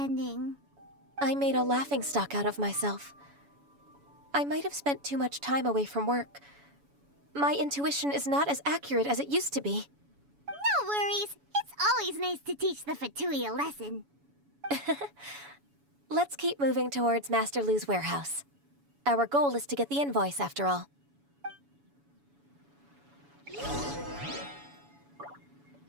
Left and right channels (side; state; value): left; late; 7.1 ms